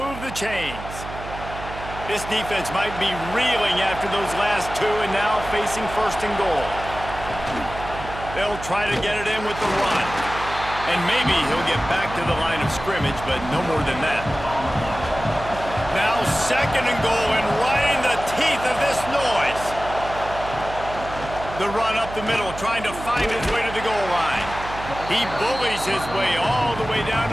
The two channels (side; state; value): right; noise; hum, 11 dB below the sound